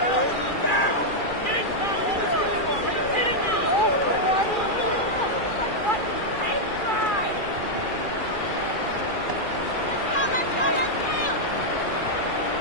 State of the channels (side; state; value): right; late; 2.4 ms